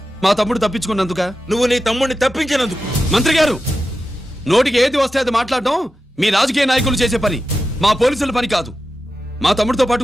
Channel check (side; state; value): both; normal; correlation 0.91